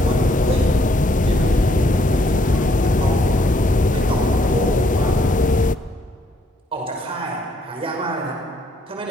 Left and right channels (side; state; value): both; normal; correlation 0.69